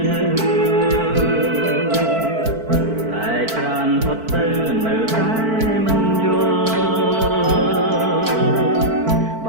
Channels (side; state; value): left; late; 4.5 ms